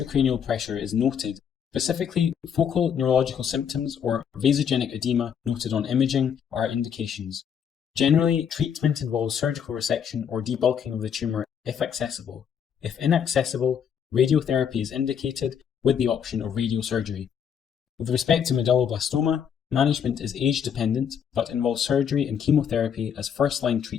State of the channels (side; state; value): right; quieter; 8.0 dB